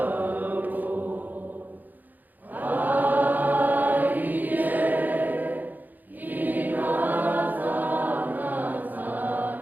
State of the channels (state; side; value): late; left; 0.084 ms